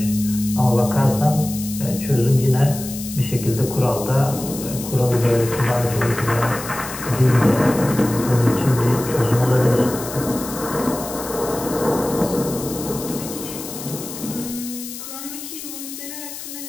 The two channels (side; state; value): left; noise; hiss, 10 dB below the sound